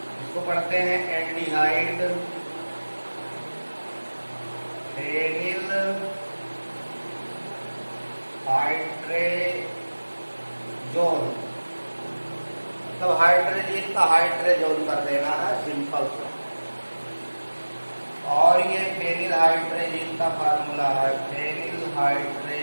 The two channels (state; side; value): inverted; both; correlation -1.00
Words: इसको पढ़ते हैं एल्डिहाइड फेनिल हाइड्रेजोन, मतलब हाइड्रोजन का हाइड्रेजोन कर देना है सिंपल सा। और ये फेनिल हाइड्रेजीन का फार्मूला है, फेनिल